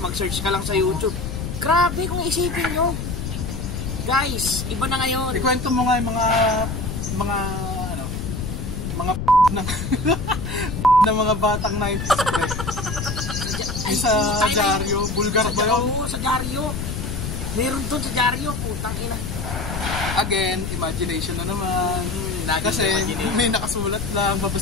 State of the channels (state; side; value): noise; left; rumble, 5 dB below the sound